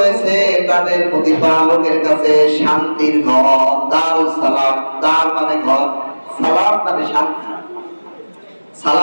তাদের প্রতিপালকের কাছে শান্তির ঘর। দারুস সালাম, দার মানে ঘর, সালাম মানে শান্তি,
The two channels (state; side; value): inverted; both; correlation -1.00